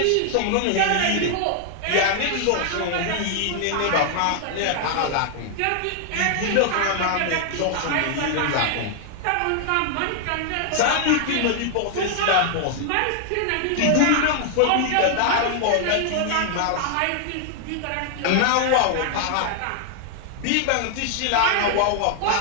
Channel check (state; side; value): different; both; correlation 0.00